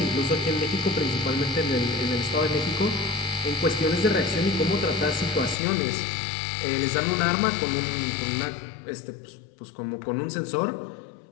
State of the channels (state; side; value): drops out; right; at 5.6 s